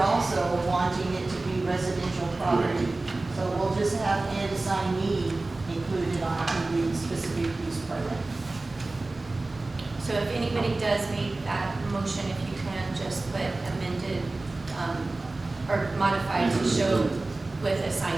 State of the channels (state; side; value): quieter; left; 3.2 dB